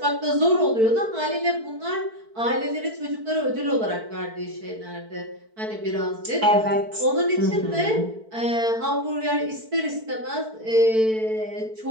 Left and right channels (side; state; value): left; late; 4.6 ms